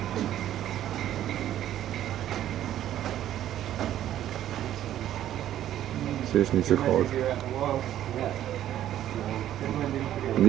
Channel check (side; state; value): left; quieter; 12.0 dB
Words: Ze is niet zo groot. En